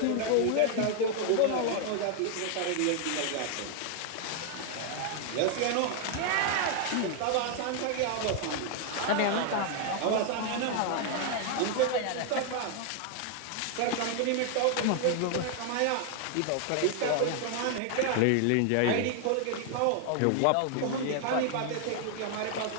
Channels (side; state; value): both; different; correlation 0.00